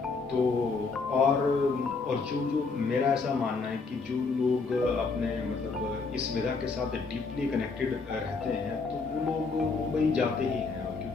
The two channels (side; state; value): right; quieter; 4.4 dB